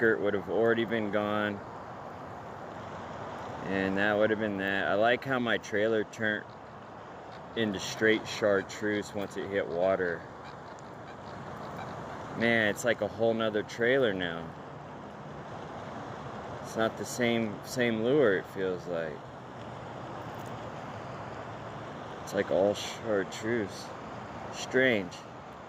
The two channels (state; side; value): identical; both; correlation 1.00